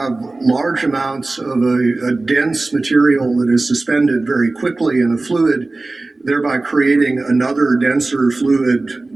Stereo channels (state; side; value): quieter; left; 3.2 dB